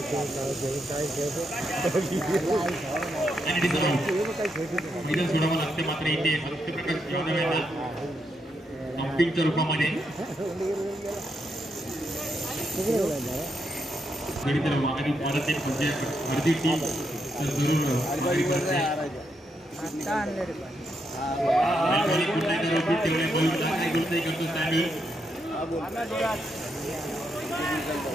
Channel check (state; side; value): normal; both; correlation 0.80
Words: मैदान सोडावं लागते मात्र इथे सत्यप्रकाश यादव यांना अपीलच्या रूपामध्ये तर माघारी परत एक म्हणजे अर्धी टीम तर जरूर माघारी करते.